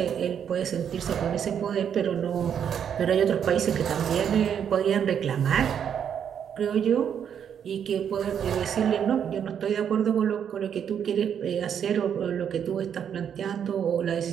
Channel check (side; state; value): left; quieter; 8.4 dB